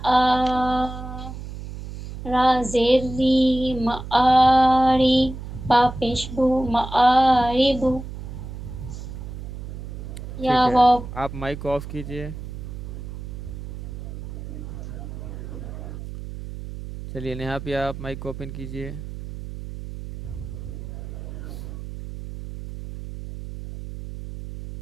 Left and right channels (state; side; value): noise; right; hum, 10 dB below the sound